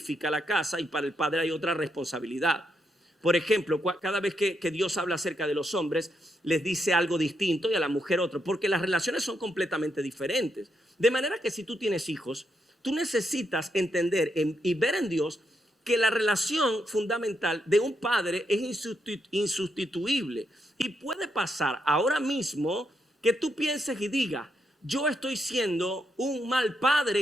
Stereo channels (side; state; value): both; normal; correlation 0.80